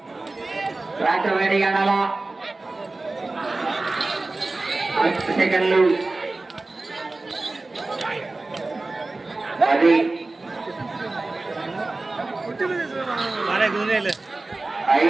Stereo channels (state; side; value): quieter; left; 3.2 dB